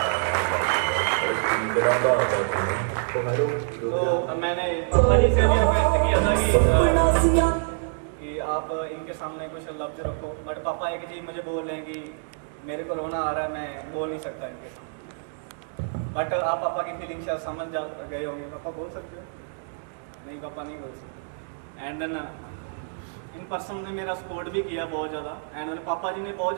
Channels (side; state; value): left; silent; digital silence